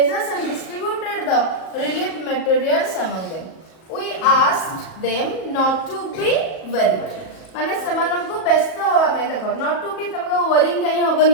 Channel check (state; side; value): late; right; 38 ms